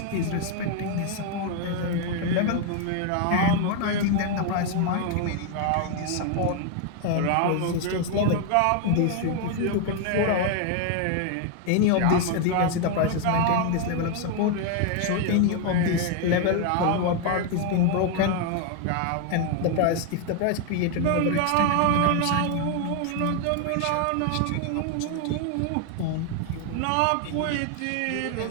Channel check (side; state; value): both; different; correlation 0.01